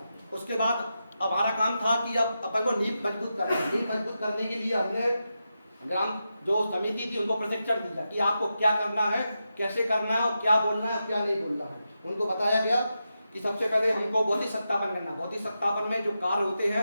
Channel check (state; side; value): inverted; both; correlation -0.88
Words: उसके बाद अब हमारा काम था कि अब अपन को नींव मजबूत करना है। नींव मजबूत करने के लिए हमने ग्राम जो समिति थी उनको प्रशिक्षण दिया कि आपको क्या करना है, कैसे करना है और क्या बोलना है और क्या नहीं बोलना है। उनको बताया गया कि सबसे पहले हमको भौतिक सत्यापन करना। भौतिक सत्यापन में जो कार्य होते